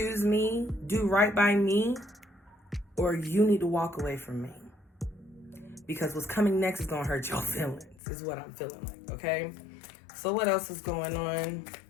me, do right by me, or you need to walk away from me. Because what's coming next is going to hurt your feelings, is what I'm feeling like, okay? So what else is going on?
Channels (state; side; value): drops out; right; at 8.0 s